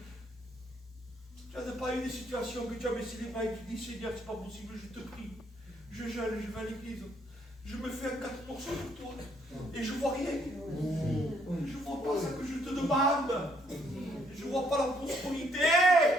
Tu n'as pas eu des situations que tu as baissé les bras et tu dis, Seigneur, c'est pas possible, je te prie. Je jeûne, je vais à l'église. Je me fais un 4% pour toi. Et je ne vois rien. Je ne vois pas ce que je te demande. Je ne vois pas la prospérité.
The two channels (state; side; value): normal; both; correlation 0.69